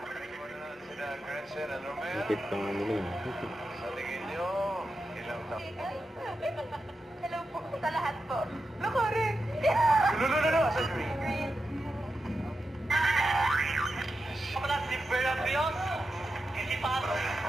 Higit pa nga nila yun. Sa tingin nyo, ilang taon? Hello po sa lahat po. No, correct. No, sa green. Kapala si Verabios, hindi pa ako.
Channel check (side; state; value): both; normal; correlation 0.89